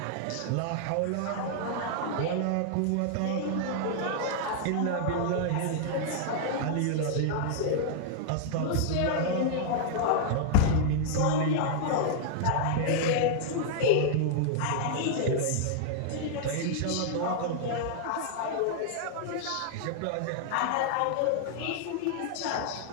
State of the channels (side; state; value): both; different; correlation -0.01